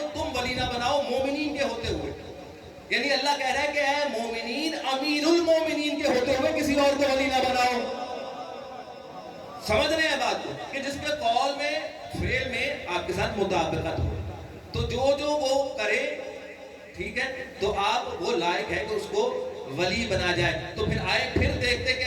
تم ولی نہ بناؤ مومنین کے ہوتے ہوئے. یعنی اللہ کہہ رہا ہے کہ اے مومنین امیر المومنین کے ہوتے ہوئے کسی اور کو ولی نہ بناؤ. سمجھ رہے ہیں بات کو کہ جس کے قول میں فعل میں آپ کے ساتھ مطابقت ہو، تو جو وہ کرے ٹھیک ہے تو آپ وہ لائق ہے کہ اس کو ولی بنا جائے. تو پھر دیکھتے کہ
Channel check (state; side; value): identical; both; correlation 1.00